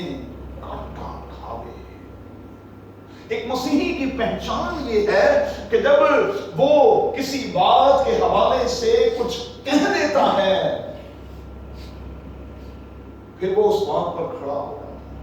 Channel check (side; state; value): both; identical; correlation 1.00